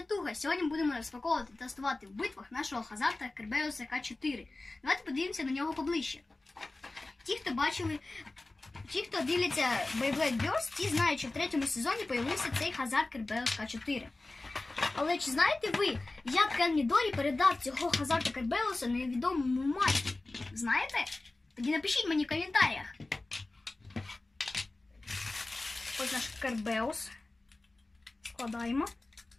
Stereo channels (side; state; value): right; quieter; 3.1 dB